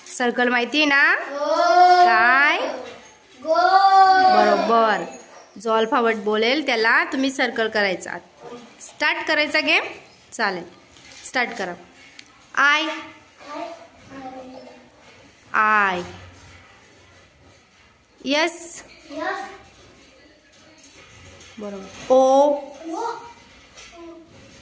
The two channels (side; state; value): both; identical; correlation 1.00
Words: सर्कल माहिती ना? काय? बरोबर. जो अल्फाबेट बोलेल त्याला तुम्ही सर्कल करायचा. स्टार्ट करायचा गेम. चालेल, स्टार्ट करा. आय. I. Yes. बरोबर. O.